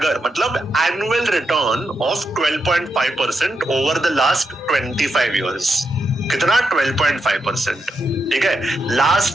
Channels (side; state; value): both; normal; correlation 0.84